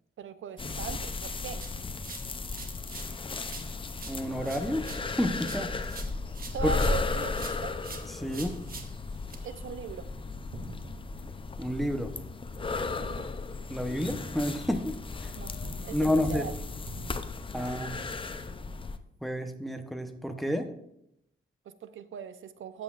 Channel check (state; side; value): normal; both; correlation 0.69